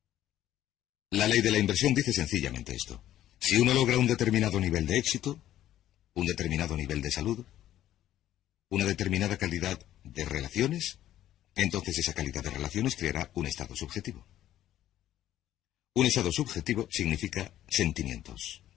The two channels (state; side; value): quieter; right; 12.7 dB